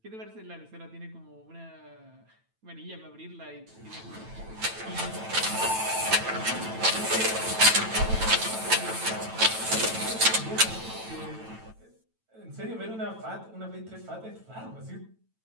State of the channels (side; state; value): left; late; 9.0 ms